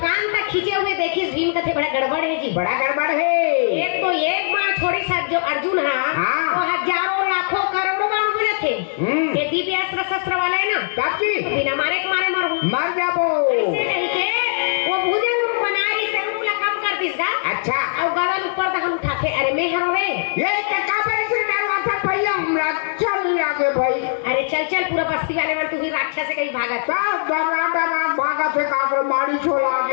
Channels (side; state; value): right; silent; digital silence